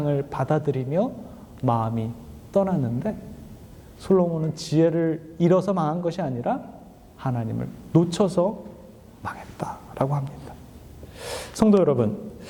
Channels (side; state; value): both; identical; correlation 1.00